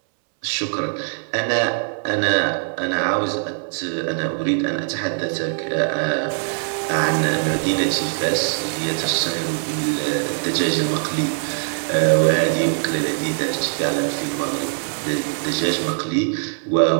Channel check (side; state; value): left; silent; 64 dB below the other